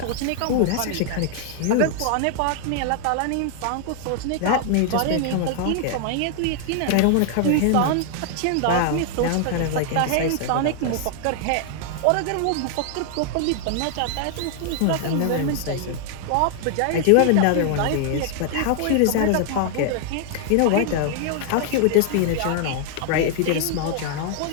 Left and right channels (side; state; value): both; different; correlation 0.00